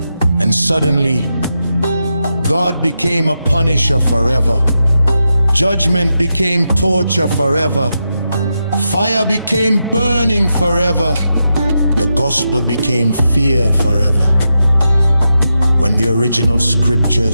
And suddenly, God became a punisher forever. Judgment became torture forever. Fire became burning forever. The gospel became fear forever. When the original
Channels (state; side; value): inverted; both; correlation -0.87